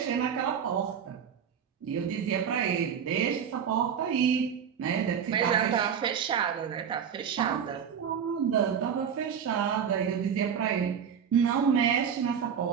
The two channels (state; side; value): quieter; left; 7.7 dB